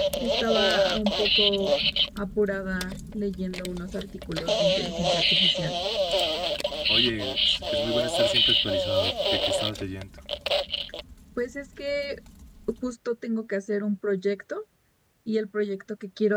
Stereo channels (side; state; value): both; identical; correlation 1.00